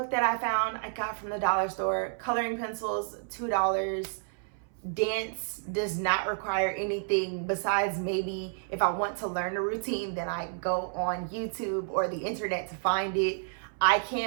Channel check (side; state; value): left; silent; 58 dB below the other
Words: that I found, I got from the dollar store. Coloring pencils, $2. Dance does not require anything besides maybe if I want to learn a routine, then I go on YouTube or the internet to find it. I